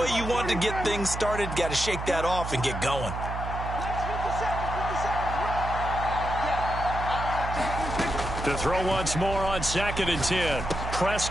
you want to get things started. Got to shake that off and get going. To throw once more on 2nd and 10.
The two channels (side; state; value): right; noise; hum, 6 dB below the sound